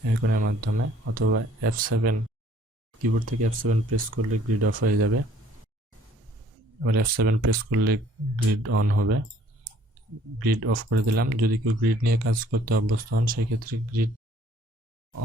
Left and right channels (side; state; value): both; normal; correlation 0.58